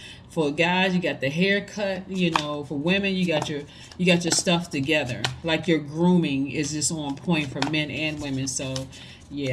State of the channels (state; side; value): identical; both; correlation 1.00